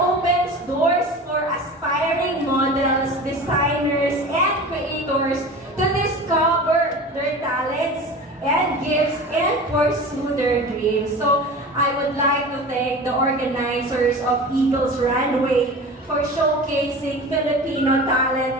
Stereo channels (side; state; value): both; normal; correlation 0.34